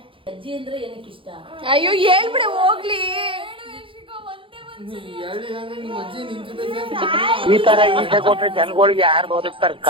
ಅಜ್ಜಿ ಅಂದ್ರೆ ಏನಕ್ಕೆ ಇಷ್ಟ? ಅಯ್ಯೋ ಹೇಳ್ಬಿಡೆ ಹೋಗ್ಲಿ. ಹೇಳಿಲ್ಲ ಅಂದ್ರೆ ನಿಮ್ಮ ಅಜ್ಜಿ ನಿನ್ ಜೊತೆ ಈ ತರ ಈಸೆ ಕೊಟ್ರೆ ಜನಗಳಿಗೆ ಯಾರು ಬದುಕ್ತಾರಕ್ಕ?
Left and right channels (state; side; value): late; left; 0.25 ms